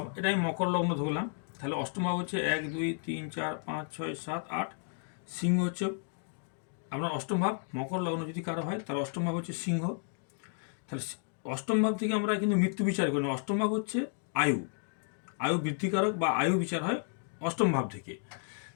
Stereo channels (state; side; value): silent; right; 56 dB below the other